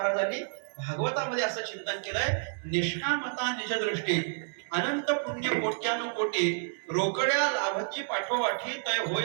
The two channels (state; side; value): silent; left; digital silence